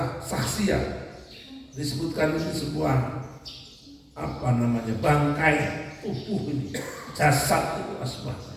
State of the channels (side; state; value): both; identical; correlation 1.00